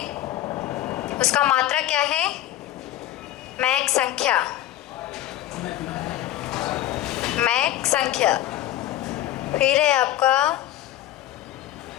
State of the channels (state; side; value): quieter; right; 13.8 dB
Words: उसका मात्रक क्या है? मैक संख्या, मैक संख्या। फिर है आपका